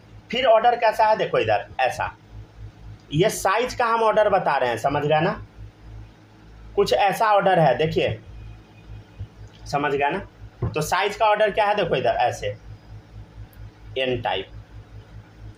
फिर ऑर्डर कैसा है देखो इधर ऐसा। ये साइज का हम ऑर्डर बता रहे हैं, समझ गया ना, कुछ ऐसा ऑर्डर है, देखिए समझ गया ना। तो साइज का ऑर्डर क्या है, देखो इधर ऐसे एन टाइप,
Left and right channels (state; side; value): identical; both; correlation 1.00